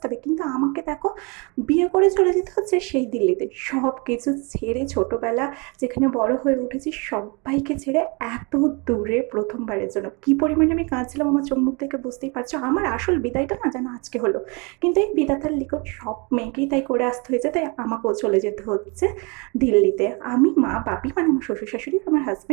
কিন্তু আমাকে দেখো, বিয়ে করে চলে যেতে হচ্ছে সেই দিল্লিতে। সব কিছু ছেড়ে, ছোটবেলা যেখানে বড় হয়ে উঠেছি সবাইকে ছেড়ে এত দূরে প্রথমবারের জন্য কি পরিমাণে আমি কাঁদছিলাম আমার চোখ মুখ থেকে বুঝতেই পারছো। আমার আসল বিদায়টা না যেন আজকে হলো, কিন্তু এই বিধাতার লিখন সব মেয়েকেই তাই করে আসতে হয়েছে, তাই আমাকেও চলে যেতে হচ্ছে দিল্লিতে। আমি, মা, বাপি মানে আমার শ্বশুর শাশুড়ি, আমার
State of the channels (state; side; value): quieter; left; 30.6 dB